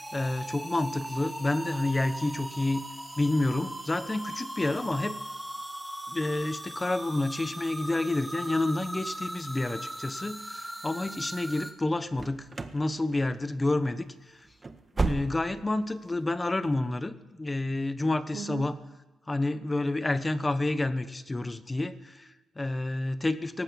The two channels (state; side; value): normal; both; correlation 0.97